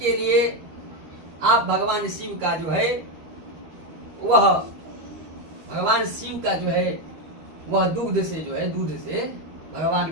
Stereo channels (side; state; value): left; late; 13 ms